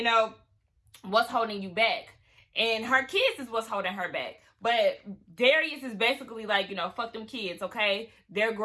What's holding you back? And her kids is what's holding her back. But Darius is basically like, fuck them kids, okay? They're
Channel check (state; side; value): identical; both; correlation 1.00